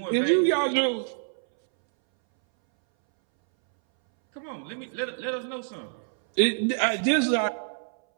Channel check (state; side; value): silent; left; 61 dB below the other